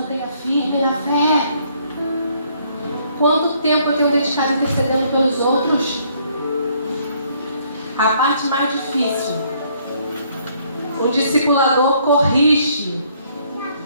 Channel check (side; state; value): both; inverted; correlation -0.66